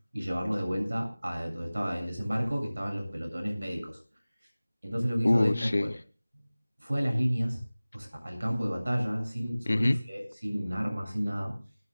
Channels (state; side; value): inverted; both; correlation -0.98